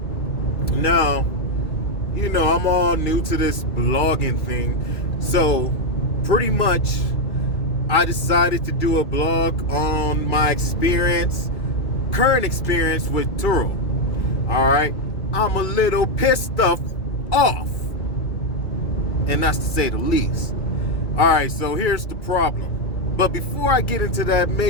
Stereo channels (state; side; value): late; right; 2.2 ms